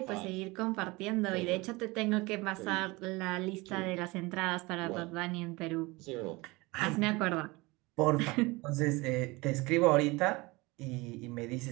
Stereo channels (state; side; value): quieter; left; 23.4 dB